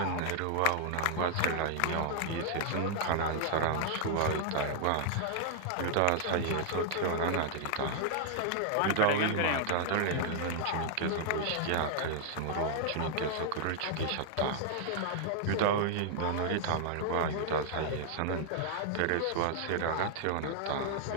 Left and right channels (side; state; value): both; different; correlation -0.01